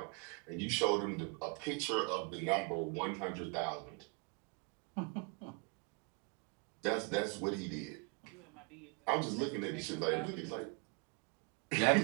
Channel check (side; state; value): left; quieter; 32.3 dB